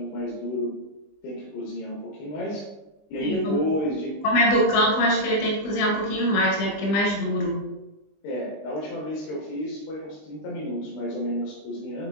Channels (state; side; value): late; right; 20 ms